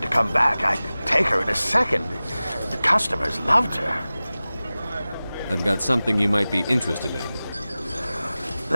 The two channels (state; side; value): inverted; both; correlation -0.97